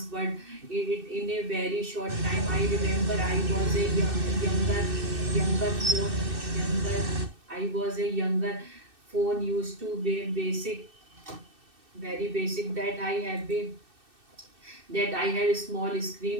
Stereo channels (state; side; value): late; left; 2.6 ms